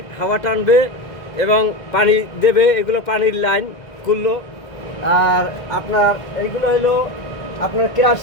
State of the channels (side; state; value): right; late; 2.1 ms